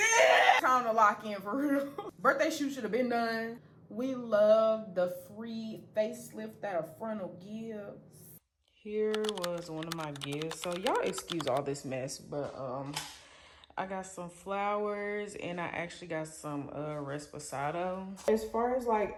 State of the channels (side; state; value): both; identical; correlation 1.00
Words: Time to lock in for real. Birthday shoot should have been done. We love the free facelift that a frontal gives. Here was one of my gifts. So y'all excuse all this mess, but I got some flowers and I actually got some Resposado. As far as like